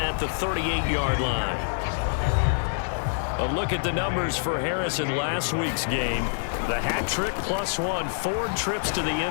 the 38-yard line. A look at the numbers for Harris in last week's game. The hat trick +1, 4 trips to the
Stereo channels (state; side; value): silent; right; digital silence